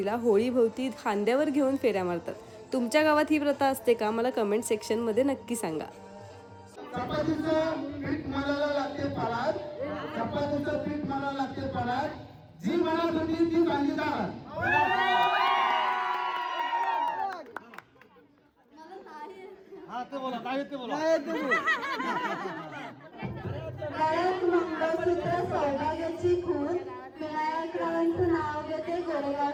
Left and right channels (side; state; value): both; identical; correlation 1.00